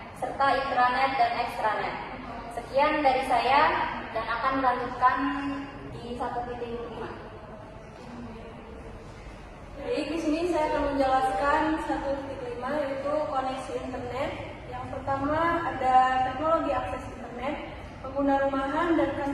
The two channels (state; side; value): identical; both; correlation 1.00